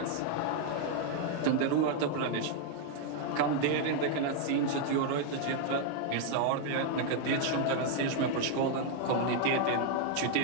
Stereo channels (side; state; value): both; different; correlation 0.00